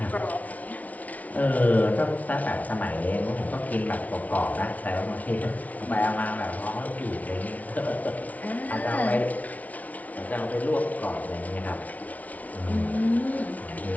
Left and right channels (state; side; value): late; right; 0.071 ms